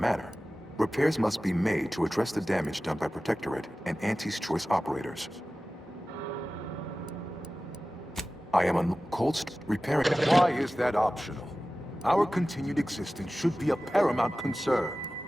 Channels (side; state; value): both; normal; correlation 0.96